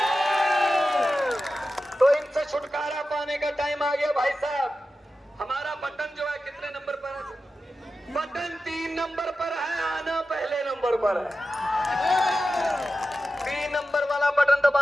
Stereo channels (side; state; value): both; normal; correlation 0.93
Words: तो इनसे छुटकारा पाने का टाइम आ गया भाई साहब। हमारा बटन जो है कितने नंबर पर है? बटन 3 नंबर पर है, आना पहले नंबर पर है। 3 नंबर वाला बटन